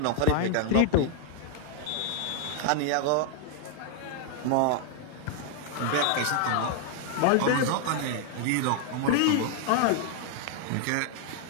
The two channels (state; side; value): different; both; correlation 0.00